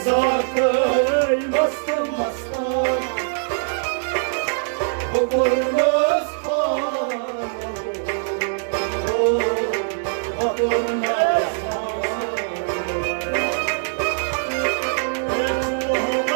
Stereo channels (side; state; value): left; silent; digital silence